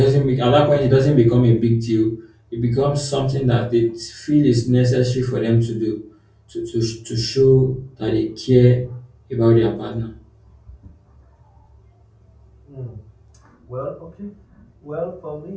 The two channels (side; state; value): both; identical; correlation 1.00